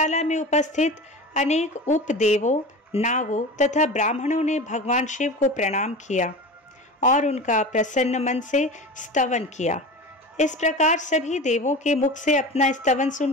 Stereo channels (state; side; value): normal; both; correlation 0.31